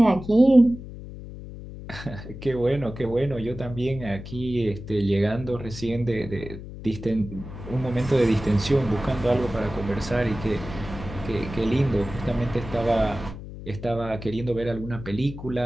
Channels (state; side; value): noise; left; hum, 12 dB below the sound